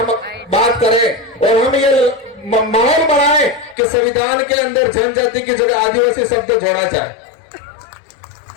बात करें और हम ये माहौल बनाएं कि संविधान के अंदर जनजाति की जगह आदिवासी शब्द जोड़ा जाए।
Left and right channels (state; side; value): drops out; right; at 3.8 s